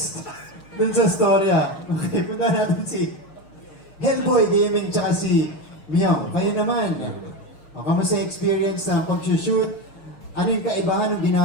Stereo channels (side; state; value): right; late; 6.5 ms